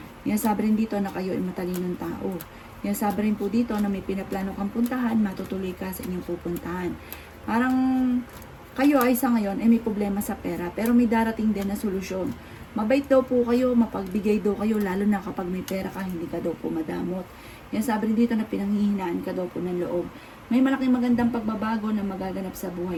Sinasabi rin dito na kayo ay matalinong tao. Sinasabi rin po dito na may pinaplano kang puntahan, matutuloy ka sa inyong pupuntahan. Parang kayo ay sa ngayon ay may problema sa pera, pero may darating din na solusyon. Mabait daw po kayo, mapagbigay daw kayo, lalo na kapag may pera ka, hindi ka daw po madamot. Yan sabi rin dito na pinanghihinaan ka daw po ng loob. May malaking magandang pagbabago na magaganap sa buhay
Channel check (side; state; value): both; identical; correlation 1.00